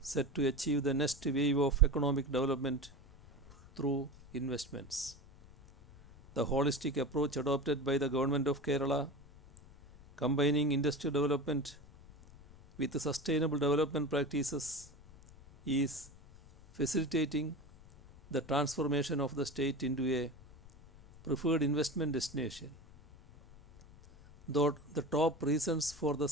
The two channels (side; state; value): left; noise; rumble, 22 dB below the sound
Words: set to achieve the next wave of economic development through investments. The holistic approach adopted by the government of Kerala, combining industrial development with sustainable development practices, is facilitating the transformation of the state into a preferred investment destination. Though the top reasons for the